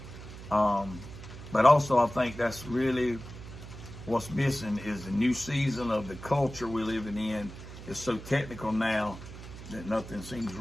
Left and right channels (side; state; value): right; noise; hum, 13 dB below the sound